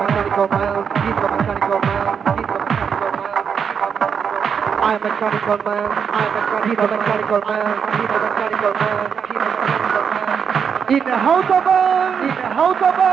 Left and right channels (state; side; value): quieter; left; 6.9 dB